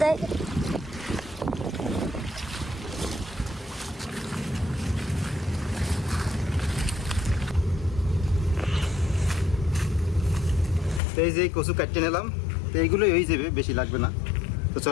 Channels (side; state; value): right; drops out; at 11.0 s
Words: দেয়। তো এই যে কচু কাটতে নিলাম, তো এইগুলোই হয়ে যাবে, বেশি লাগবে না। তো